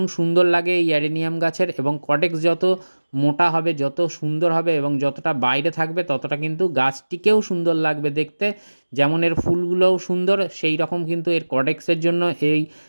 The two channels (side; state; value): both; inverted; correlation -1.00